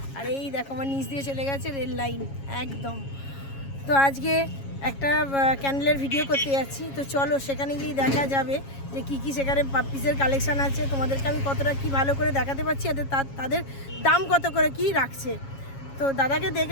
আর এই দেখো আমার নিচ দিয়ে চলে গেছে রেল লাইন একদম। তো আজকে একটা ক্যান্ডেলের ভিডিও করতে যাচ্ছি। তো চলো সেখানে গিয়ে দেখা যাবে যে কী সেখানে পাপ্পিসের কালেকশান আছে। তোমাদেরকে আমি কতটা কি ভালো করে দেখাতে পারছি, তাদের দাম কত করে কি রাখছে। তো দাদাকে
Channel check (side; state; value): right; late; 7.3 ms